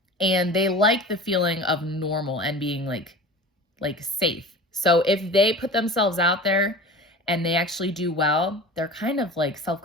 And they like the feeling of normal and being like safe. So if they put themselves out there and they actually do well, they're kind of like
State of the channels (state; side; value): normal; both; correlation 0.36